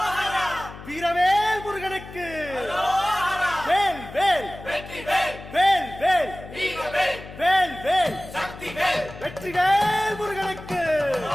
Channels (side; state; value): left; noise; hum, 15 dB below the sound